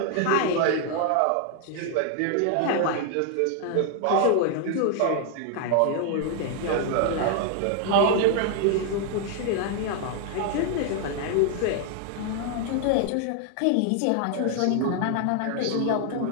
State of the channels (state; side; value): different; both; correlation 0.00